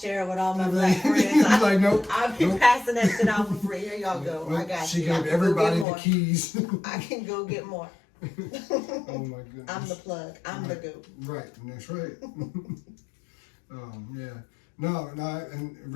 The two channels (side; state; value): right; drops out; at 5.9 s